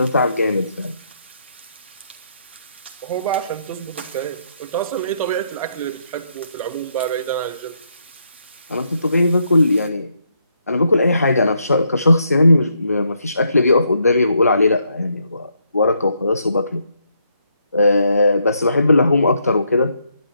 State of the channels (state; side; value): inverted; both; correlation -0.76